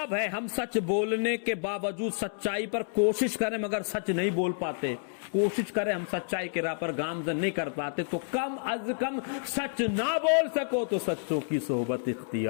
ہے؟ ہم سچ بولنے کے باوجود سچائی پر کوشش کریں مگر سچ نہیں بول پاتے, کوشش کریں ہم سچائی کے راہ پر گامزن نہیں کر پاتے, تو کم از کم سچ نہ بول سکو تو سچوں کی صحبت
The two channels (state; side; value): silent; right; 58 dB below the other